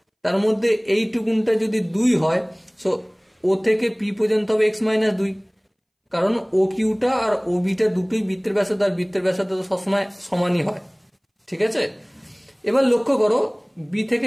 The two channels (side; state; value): both; identical; correlation 1.00